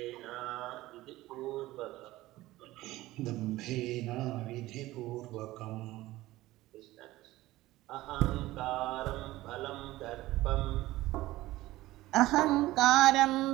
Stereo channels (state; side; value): quieter; left; 17.3 dB